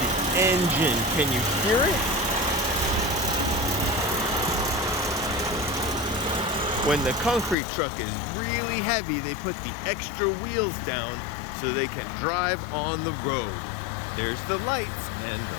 engine. Can you hear it? When the concrete truck is really heavy, they put the extra wheels down so they can drive on the road. There's the lights and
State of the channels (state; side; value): drops out; right; at 7.6 s